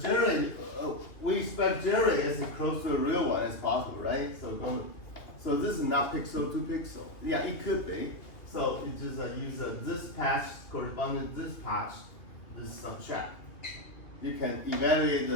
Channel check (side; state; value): right; late; 2.8 ms